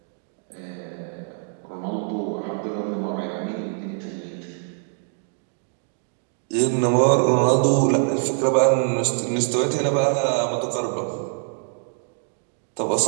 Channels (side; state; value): left; silent; 60 dB below the other